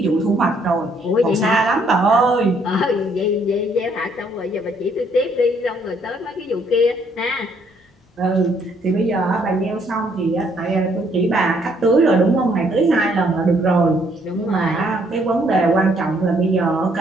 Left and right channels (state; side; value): normal; both; correlation 0.67